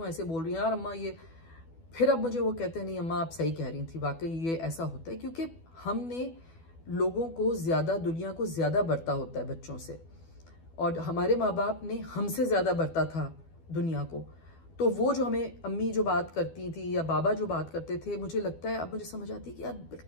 ऐसे बोल रही हैं, यार अम्मा ये। फिर अब मुझे वो कहते हैं, नहीं अम्मा आप सही कह रही थी, वाकई ये ऐसा होता है, क्योंकि हमने लोगों को ज़्यादा, दुनिया को ज़्यादा बरता होता है बच्चों से, और हमारे माँ बाप ने हमसे ज़्यादा बरता था दुनिया को। तो वो जो हमें अम्मी जो बात करती थी या बाबा जो बात करते थे, मुझे लगता है अब मुझे समझ आती है कि यार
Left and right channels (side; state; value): right; late; 12 ms